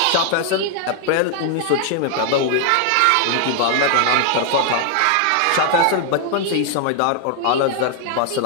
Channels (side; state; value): both; different; correlation 0.00